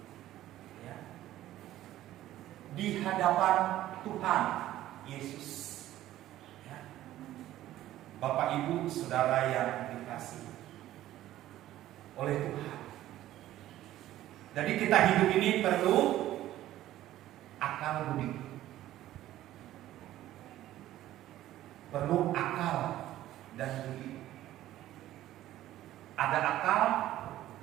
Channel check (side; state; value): left; quieter; 14.0 dB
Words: ya, di hadapan Tuhan Yesus, ya. Bapak Ibu Saudara yang dikasihi oleh Tuhan. Jadi kita hidup ini perlu akal budi. Perlu akal dan budi. Ada akal